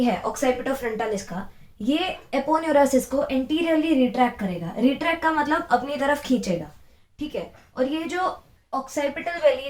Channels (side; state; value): both; identical; correlation 1.00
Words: है ऑक्साइपिटोफ्रंटालिस का, ये एपोन्यूरोसिस को एंटीरियरली रिट्रैक्ट करेगा. रिट्रैक्ट का मतलब अपनी तरफ खींचेगा. ठीक है. और ये जो ऑक्साइपिटल बेली